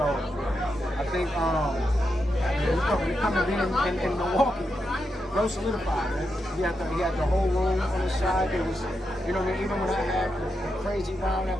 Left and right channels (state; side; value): normal; both; correlation 0.85